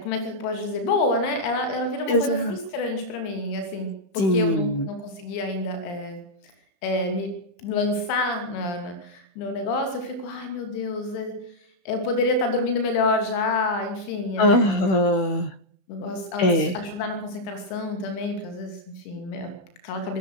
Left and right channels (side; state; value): right; late; 16 ms